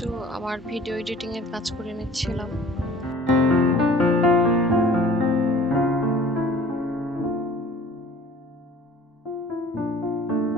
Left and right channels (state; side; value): normal; both; correlation 0.48